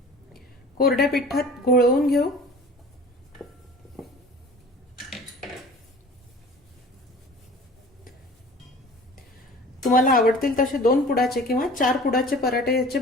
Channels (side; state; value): both; normal; correlation 0.43